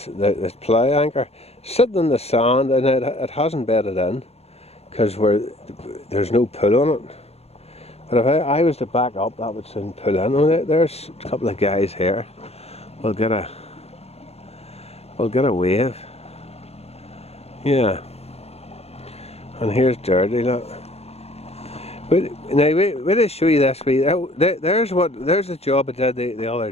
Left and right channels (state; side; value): late; right; 0.30 ms